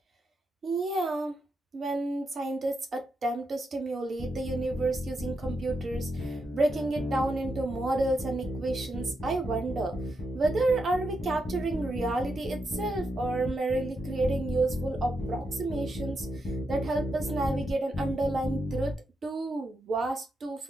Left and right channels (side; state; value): both; normal; correlation 0.84